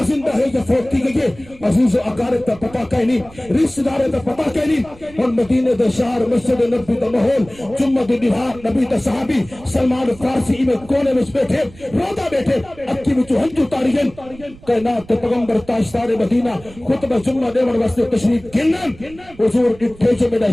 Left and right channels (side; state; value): right; noise; rumble, 22 dB below the sound